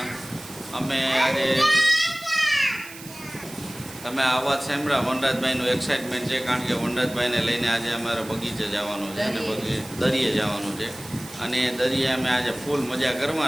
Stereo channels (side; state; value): right; noise; hiss, 16 dB below the sound